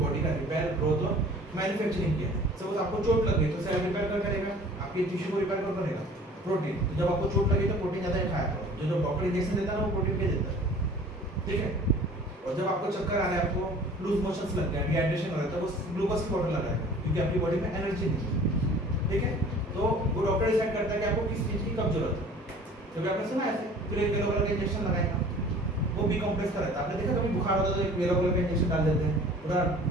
का रिपेयर, ग्रोथ और मैन्युफैक्चरिंग किया। सपोज आपको चोट लग गई तो सेल रिपेयर कर करेगा, आपके टिश्यू को रिपेयर कर करेगा प्रोटीन। तो जब आपको चोट लगी तो प्रोटीन ज़्यादा खाया करो। जो डॉक्टर इंजेक्शन देता है ना वो प्रोटीन के देता है, ठीक है। और जब आपको चक्कर आ रहा है, आपको लूज मोशंस लग गया, डिहाइड्रेशन हो रहा है, तो वो ग्लूकोज की बॉटल लगाएगा क्योंकि आपकी बॉडी में एनर्जी नहीं है, ठीक है। तो वो डॉक्टर डिसाइड करता है कि आपको किस चीज़ की कब जरूरत है। कभी आपने सुना ऐसे, फिर एक येलो कलर का इंजेक्शन लगाएगा, वो बी कॉम्प्लेक्स का रहता है। आपने देखा कभी बुखार होता है तो एक येलो कलर का इंजेक्शन डाल देते हैं, पूरा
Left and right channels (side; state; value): both; normal; correlation 0.48